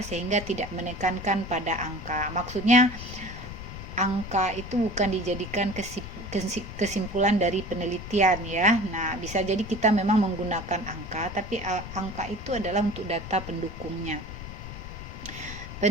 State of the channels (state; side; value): noise; left; rumble, 10 dB below the sound